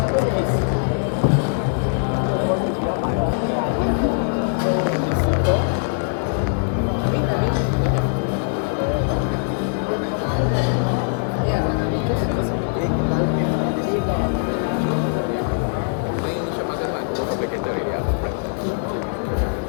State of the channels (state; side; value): silent; right; digital silence